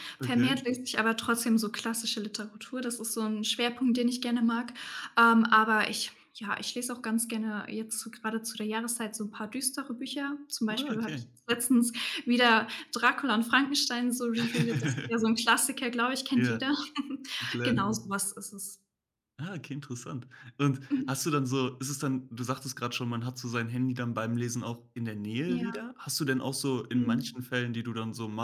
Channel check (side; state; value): both; identical; correlation 1.00